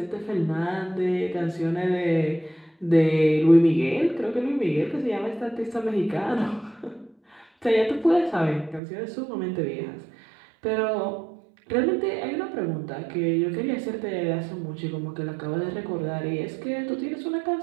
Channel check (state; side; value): drops out; left; at 8.8 s